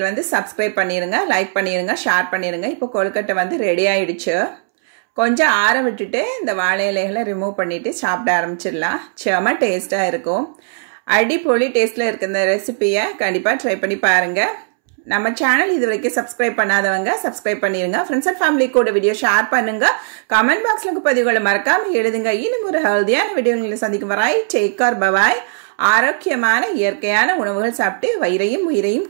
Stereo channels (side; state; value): left; silent; 68 dB below the other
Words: வந்து சப்ஸ்கிரைப் பண்ணிருங்க, லைக் பண்ணிருங்க, ஷேர் பண்ணிருங்க. இப்போ கொழுக்கட்டை வந்து ரெடி ஆயிடுச்சு. கொஞ்சம் ஆற விட்டுட்டு இந்த வாழை இலைகளை ரிமூவ் பண்ணிட்டு சாப்பிட ஆரம்பிச்சிடலாம். செம டேஸ்டா இருக்கும். அடிப்பொலி டேஸ்ட்ல இருக்க இந்த ரெசிபியை கண்டிப்பா ட்ரை பண்ணி பாருங்க. நம்ம சேனல் இது வரைக்கும் சப்ஸ்கிரைப் பண்ணாதவங்க சப்ஸ்கிரைப் பண்ணிருங்க. ஃப்ரெண்ட்ஸ் அண்ட் ஃபேமிலி கூட வீடியோ ஷேர் பண்ணுங்க. கமெண்ட் பாக்ஸ்ல பதிவுகளை மறக்காம எழுதுங்க. இன்னும் ஒரு ஹெல்தியான வீடியோங்களை சந்திக்கும் வரை டேக் கேர், பை பை. ஆரோக்கியமான இயற்கையான உணவுகள் சாப்பிட்டு வயிறையும் உயிரையும்